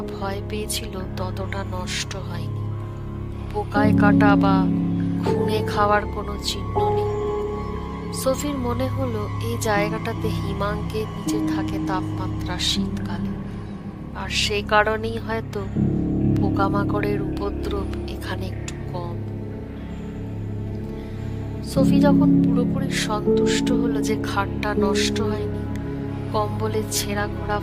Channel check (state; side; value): identical; both; correlation 1.00